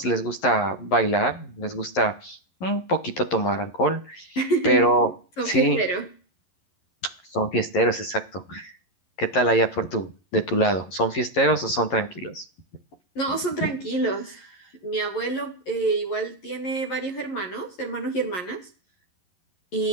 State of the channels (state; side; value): late; right; 11 ms